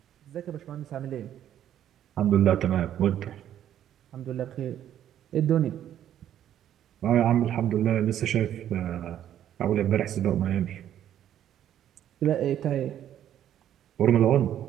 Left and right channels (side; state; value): left; quieter; 10.9 dB